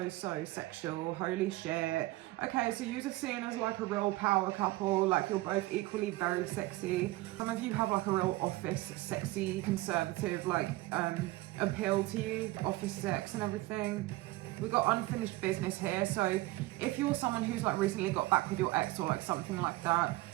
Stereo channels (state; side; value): quieter; left; 19.3 dB